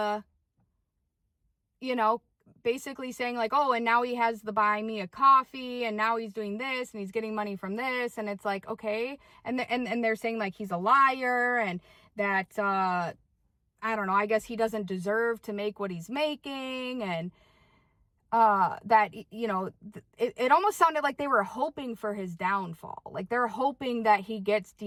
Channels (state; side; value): identical; both; correlation 1.00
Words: basically saying like, oh, and now he has the buy me a coffee, and now he's doing this, and he's getting money from this. And it's like, okay. And they're saying like he's a liar, and that, I don't know, I guess he doesn't deserve to make what he's making. And that, it almost sounded like they were hoping for his downfall. Like they're hoping that he gets